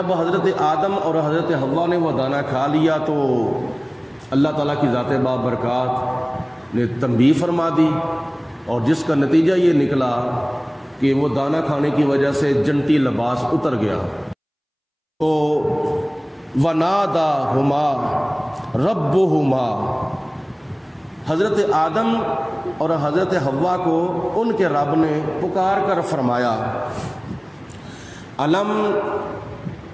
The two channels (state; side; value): identical; both; correlation 1.00